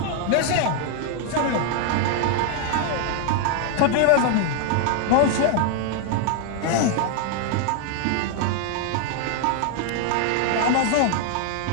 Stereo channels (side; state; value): both; different; correlation 0.00